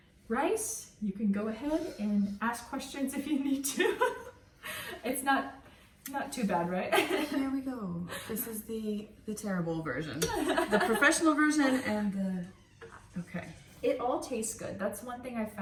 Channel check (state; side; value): identical; both; correlation 1.00